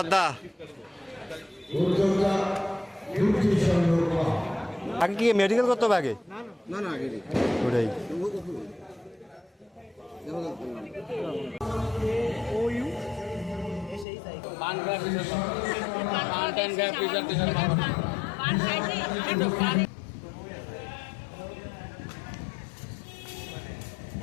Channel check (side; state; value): right; drops out; at 14.1 s